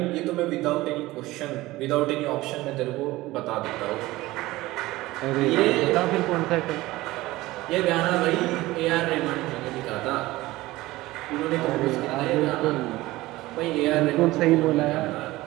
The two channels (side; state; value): left; quieter; 18.5 dB